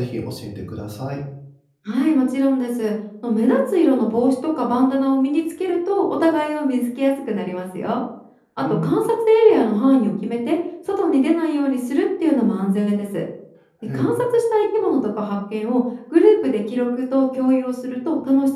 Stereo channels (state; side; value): identical; both; correlation 1.00